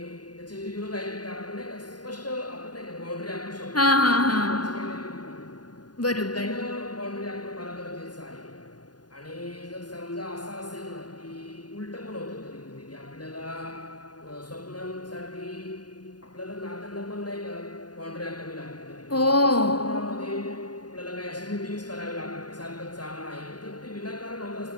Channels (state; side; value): late; right; 0.70 ms